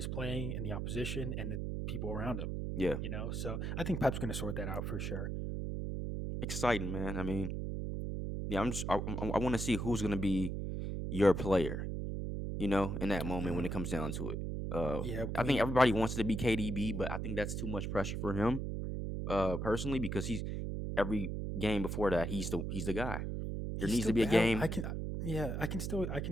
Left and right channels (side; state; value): right; noise; hum, 3 dB below the sound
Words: playing and the opposition and the people around him. Yeah. So I think Pep's going to sort that out for sure. Exciting, man. I mean, yeah, I want to see who's gonna be your player, in that moment when Mhm. it comes down to it. Yeah, I I think mean, everybody wants to be KDB, but I think that's too much pressure for him, personally, because he's every game before that, he's the guy. There he's needs still to be a battle. game. Yeah, I can